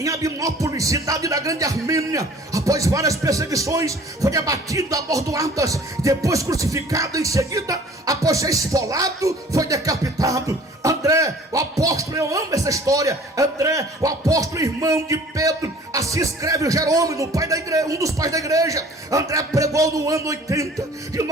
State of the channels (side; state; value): both; normal; correlation 0.50